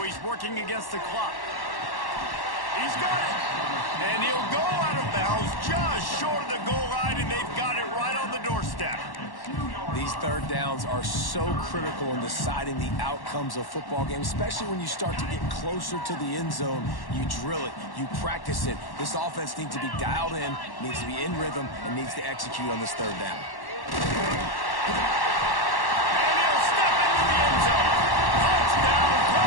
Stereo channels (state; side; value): late; right; 1.1 ms